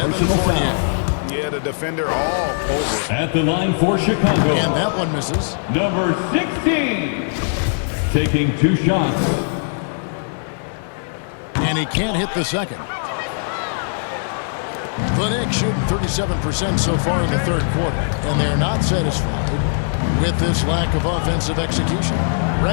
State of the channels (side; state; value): right; silent; 59 dB below the other